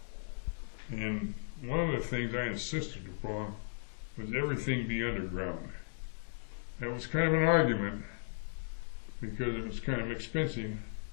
And one of the things I insisted upon was everything be underground. That was kind of an argument because it was kind of expensive,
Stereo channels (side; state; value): right; silent; digital silence